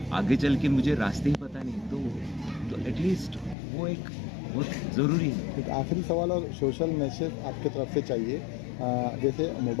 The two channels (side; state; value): right; drops out; at 3.6 s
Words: आगे चल के मुझे रास्ते ही पता नहीं तो एटलीस्ट वो एक बहुत ज़रूरी है. एक आखिरी सवाल और सोशल मैसेज आपके तरफ से चाहिए जैसे